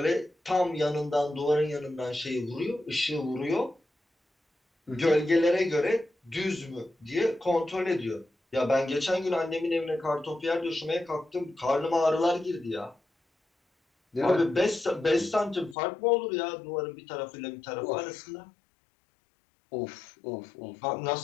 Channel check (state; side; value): drops out; right; at 15.8 s